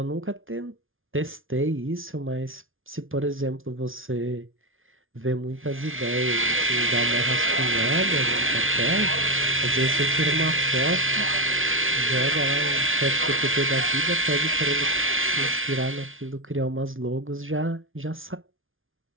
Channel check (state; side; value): late; left; 0.58 ms